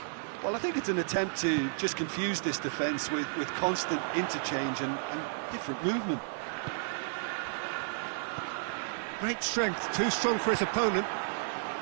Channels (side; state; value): left; silent; digital silence